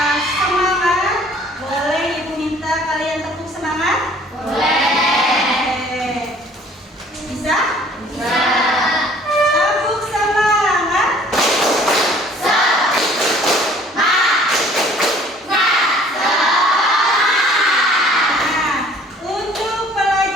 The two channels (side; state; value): both; normal; correlation 0.54